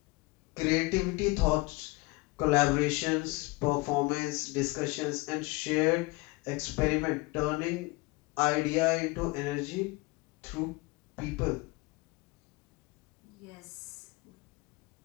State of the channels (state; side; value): quieter; right; 23.7 dB